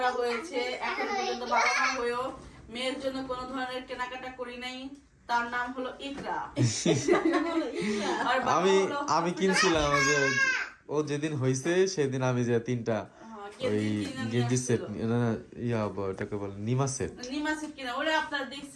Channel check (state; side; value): identical; both; correlation 1.00